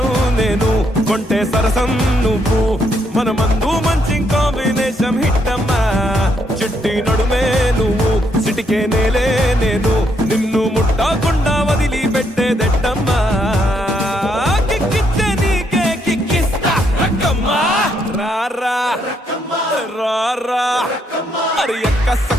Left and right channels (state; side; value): normal; both; correlation 0.75